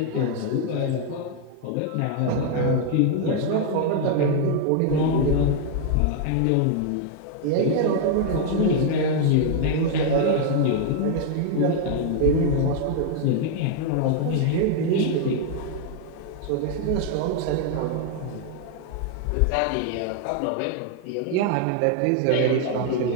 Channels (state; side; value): different; both; correlation 0.00